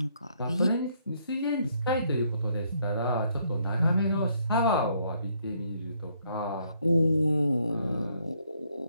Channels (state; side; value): inverted; both; correlation -0.70